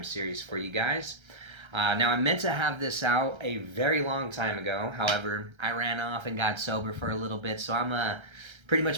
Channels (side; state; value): left; late; 1.3 ms